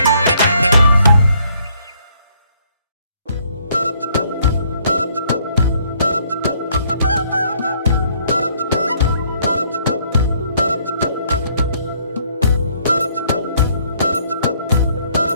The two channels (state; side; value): inverted; both; correlation -0.66